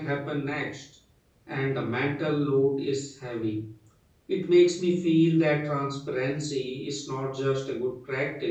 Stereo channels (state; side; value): identical; both; correlation 1.00